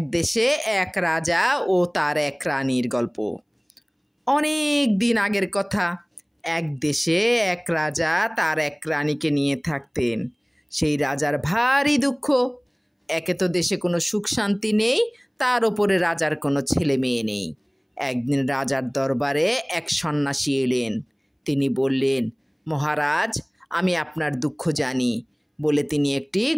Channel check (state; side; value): identical; both; correlation 1.00